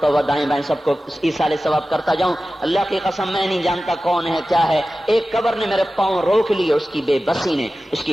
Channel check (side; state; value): both; normal; correlation 0.95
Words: ہوا دائیں بائیں سب کو ایصال ثواب کرتا جاؤں۔ اللہ کی قسم میں نہیں جانتا کون ہے کیا ہے، ایک قبر نے میرے پاؤں روک لیے، اس کی بے بسی نے، اس